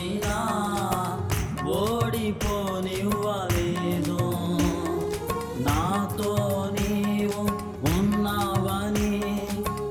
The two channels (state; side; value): identical; both; correlation 1.00